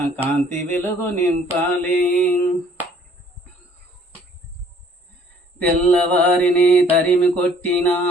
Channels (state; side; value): normal; both; correlation 0.58